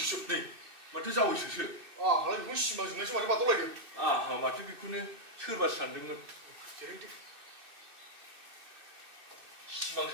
माथो जावैसोसो हालाय बेखौ सिमां जोंनायसो माथो बादावलायदों माथो बेखौनो सोरबा सानदोंमोन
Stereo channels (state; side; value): late; left; 2.6 ms